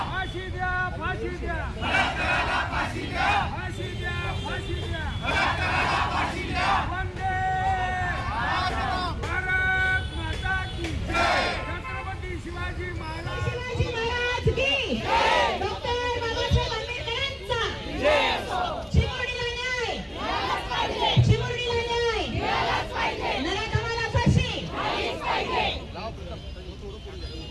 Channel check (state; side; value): identical; both; correlation 1.00